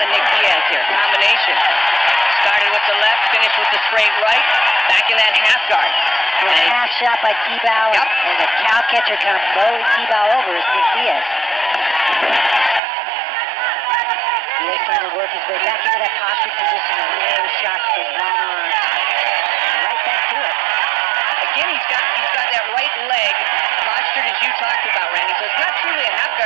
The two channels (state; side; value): drops out; left; at 12.8 s